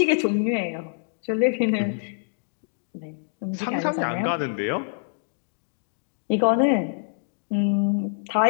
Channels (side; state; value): right; silent; digital silence